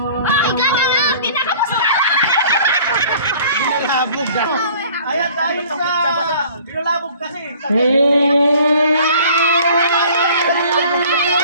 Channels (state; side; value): inverted; both; correlation -0.50